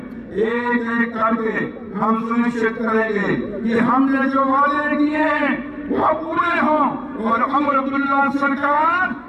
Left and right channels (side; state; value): both; identical; correlation 1.00